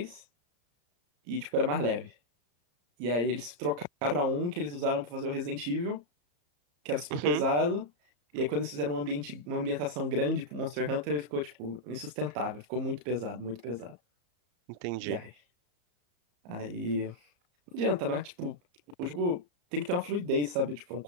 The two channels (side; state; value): left; late; 34 ms